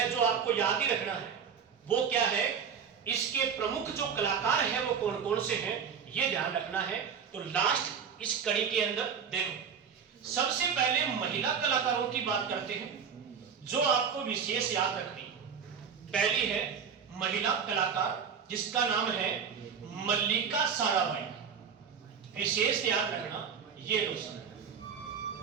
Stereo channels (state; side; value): quieter; left; 6.9 dB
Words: जो आपको याद ही रखना है वो क्या है, इसके प्रमुख जो कलाकार हैं वो कौन कौन से हैं, ये ध्यान रखना है। तो लास्ट इस कड़ी के अंदर देखो, सबसे पहले महिला कलाकारों की बात करते हैं जो आपको विशेष याद रखनी। पहली है महिला कलाकार जिसका नाम है मल्लिका साराभाई, विशेष याद रखना ये दोस्तों।